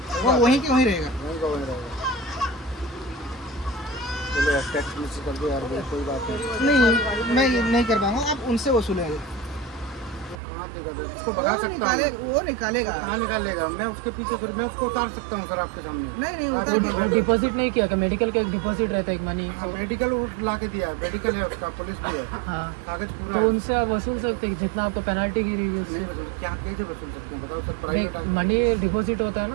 वो वहीं के वहीं रहेगा। वहीं का वहीं रहेगा। चलो यार टैक्स मिस कर दो यार भाई, कोई बात नहीं। नहीं मैं ये नहीं कर पाऊंगा, आप उनसे वसूलेंगे। तो कहाँ दिक्कत है? उसको भगा सकता हूँ। वो निकालेगा। कहाँ निकालेगा? मैं उसके पीछे फिर मैं उसको उतार सकता हूँ सर आपके सामने। नहीं उतार डिपॉजिट नहीं किया, मेडिकल का एक डिपॉजिट रहता है एक मनी। हाँ, मेडिकल ला के दिया है, मेडिकल है उसका, पुलिस भी है, हाँ, कागज पूरा तो है। उनसे आप वसूल सकते हैं जितना आपको पेनल्टी गिरी है उससे। नहीं वसूल, क्या कैसे वसूल सकते हैं बताओ सर? प्राइवेट मनी डिपॉजिट होता है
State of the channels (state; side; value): drops out; left; at 10.4 s